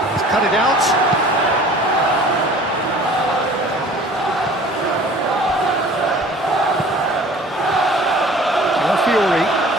He's cut it out. Fiore.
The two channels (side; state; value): both; normal; correlation 0.48